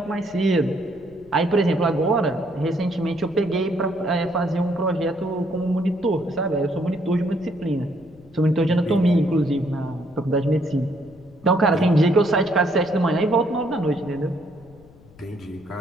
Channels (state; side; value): noise; left; rumble, 25 dB below the sound